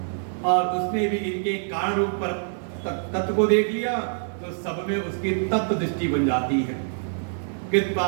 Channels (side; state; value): left; silent; digital silence